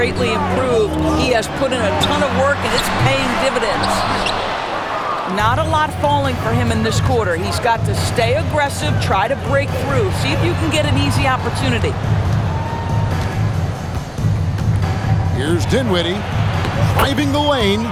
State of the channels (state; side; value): identical; both; correlation 1.00